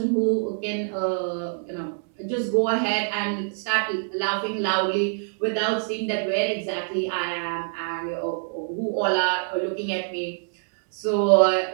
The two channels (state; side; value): silent; left; 62 dB below the other